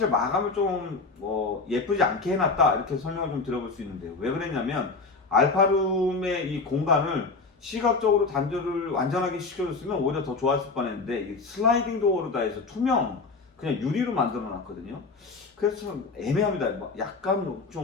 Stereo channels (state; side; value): quieter; right; 4.1 dB